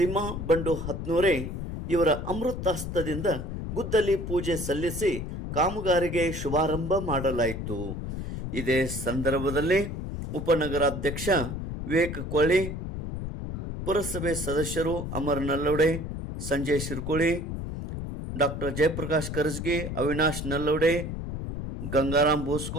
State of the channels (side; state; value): left; noise; rumble, 6 dB below the sound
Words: ಬಂಡು ಹತ್ನೂರೆ ಇವರ ಅಮೃತಾಸ್ತದಿಂದ ಗುದ್ದಲಿ ಪೂಜೆ ಸಲ್ಲಿಸಿ ಕಾಮಗಾರಿಗೆ ಶುಭಾರಂಭ ಮಾಡಲಾಯಿತು. ಇದೇ ಸಂದರ್ಭದಲ್ಲಿ ಉಪನಗರಾಧ್ಯಕ್ಷ ವಿವೇಕ್ ಕೊಳ್ಳಿ, ಪುರಸಭೆ ಸದಸ್ಯರು ಅಮರ್ ನಲ್ಲೋಡೆ, ಸಂಜಯ್ ಶಿರ್ಕೋಳಿ, ಡಾಕ್ಟರ್ ಜಯಪ್ರಕಾಶ್ ಕರಜಗಿ, ಅವಿನಾಶ್ ನಲ್ಲೋಡೆ, ಗಂಗಾರಾಮ್